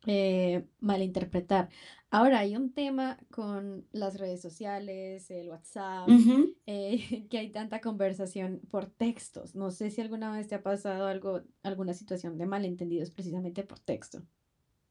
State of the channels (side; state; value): both; identical; correlation 1.00